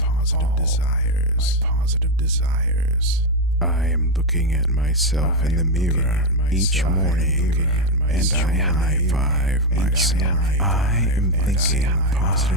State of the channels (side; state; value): both; normal; correlation 0.06